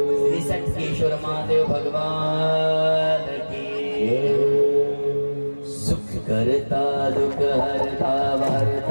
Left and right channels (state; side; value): inverted; both; correlation -1.00